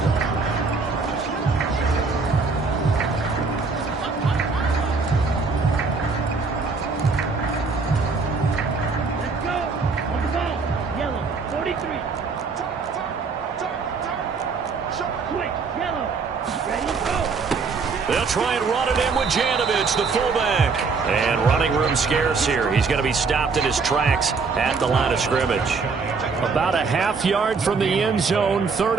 They'll try and run it in with Janovich, the fullback. And running room scarce here. He's going to be stopped in his tracks at the line of scrimmage. About a half yard from the end zone,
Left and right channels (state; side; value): quieter; left; 4.7 dB